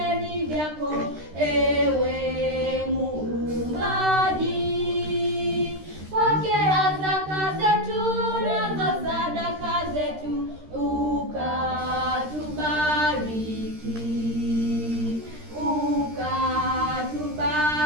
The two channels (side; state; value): left; late; 13 ms